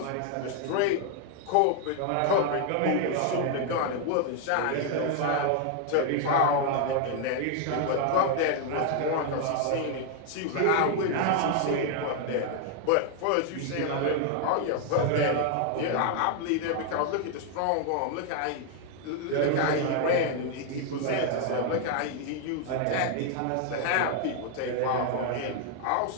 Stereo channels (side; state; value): both; different; correlation 0.00